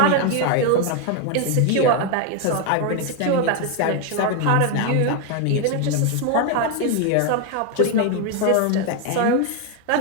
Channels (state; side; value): different; both; correlation 0.01